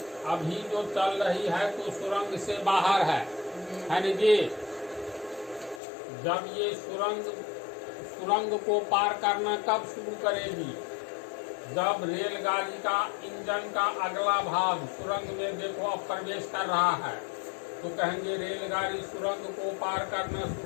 अभी जो चल रही है तो सुरंग से बाहर है ना जी। जब ये सुरंग को पार करना कब शुरू करेगी? जब रेलगाड़ी का इंजन का अगला भाग सुरंग में देखो अब प्रवेश कर रहा है, तो कहेंगे रेलगाड़ी सुरंग को पार करना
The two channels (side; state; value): right; drops out; at 5.8 s